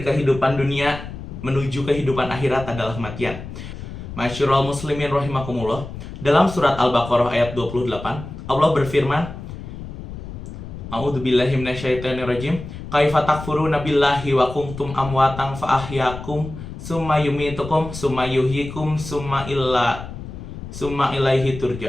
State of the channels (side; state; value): left; noise; rumble, 11 dB below the sound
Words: kehidupan dunia menuju kehidupan akhirat adalah kematian. Masyurul muslimin rahimakumullah. Dalam surat Al-Baqarah ayat 28, Allah berfirman, A'udzubillahi minasyaitonirrajim. Kaifa takfuruna billahi wa kuntum amwatan fa ahyakum summa yumitukum summa yuhyikum summa ilaihi